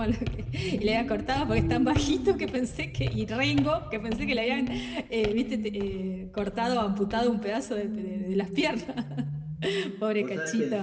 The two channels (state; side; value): identical; both; correlation 1.00